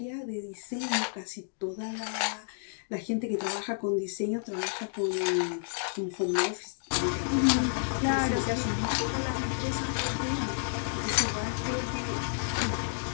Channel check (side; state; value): right; silent; digital silence